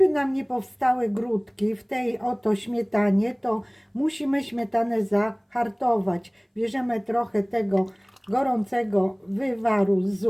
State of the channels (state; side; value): identical; both; correlation 1.00